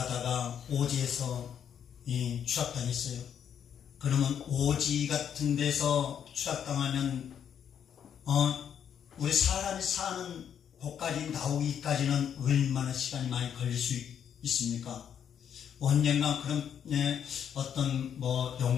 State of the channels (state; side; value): quieter; right; 8.6 dB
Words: 오지에서 추락당했어요. 그러면 오지 같은 데서 추락당하면 우리 사람이 사는 곳까지 나오기까지는 얼마나 시간이 많이 걸릴 수 있습니까? 언젠가 그런 어떤